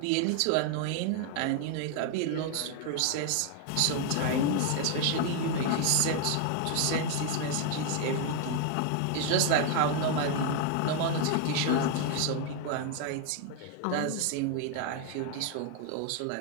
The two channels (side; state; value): both; different; correlation 0.01